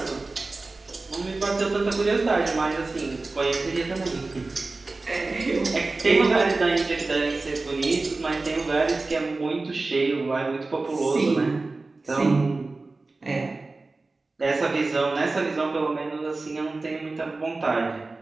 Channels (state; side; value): quieter; left; 3.5 dB